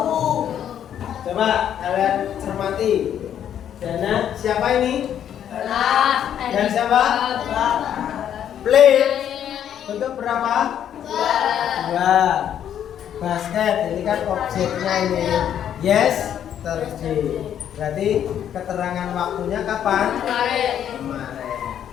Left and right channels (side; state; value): right; quieter; 9.8 dB